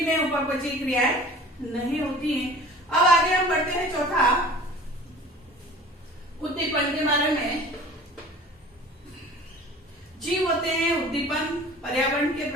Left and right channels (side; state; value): both; normal; correlation 0.44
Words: में उपापचयी क्रियाएं नहीं होती हैं। अब आगे हम बढ़ते हैं। चौथा उद्दीपन के बारे में। जीव होते हैं उद्दीपन, पर्यावरण के